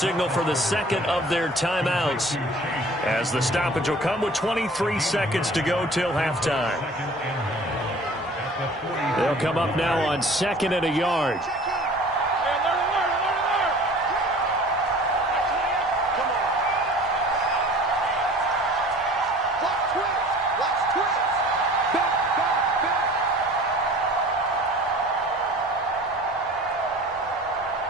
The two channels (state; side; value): normal; both; correlation 0.46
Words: for the 2nd of their timeouts, as the stoppage will come with 23 seconds to go till halftime. They'll come up now on 2nd and a yard.